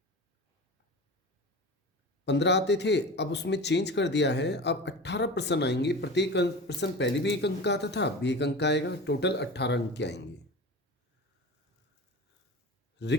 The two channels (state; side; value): normal; both; correlation 0.32